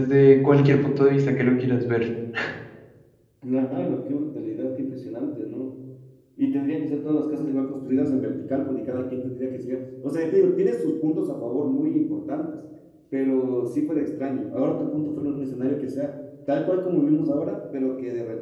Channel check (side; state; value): both; identical; correlation 1.00